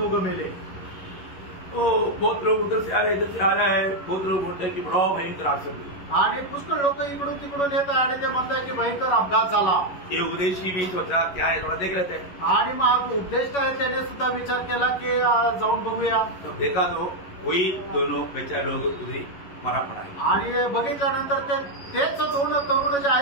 मेले. तो बहुत लोग उधर से आ रहे, इधर से आ रहा है. बहुत लोग बोलते हैं कि बड़ा भयंकर एक्सीडेंट. आणि पुष्कळ लोक इकडून तिकडून येत आहे आणि ते म्हणतात की भयंकर अपघात झाला. ये उद्देश्य भी सोचा क्या है थोड़ा देख लेते हैं. आणि मग उद्देश आहे त्याने सुद्धा विचार केला की जाऊन बघूया. तब देखा तो वही दोनों बेचारे लोग उधरी मरा पड़ा है. आणि बघितल्यानंतर तेच दोन तरुण जे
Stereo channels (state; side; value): late; right; 11 ms